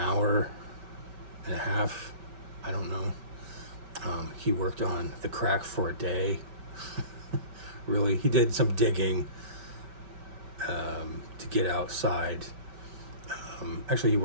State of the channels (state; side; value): late; left; 5.2 ms